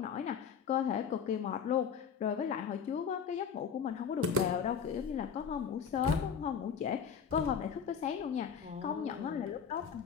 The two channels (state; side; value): quieter; right; 7.1 dB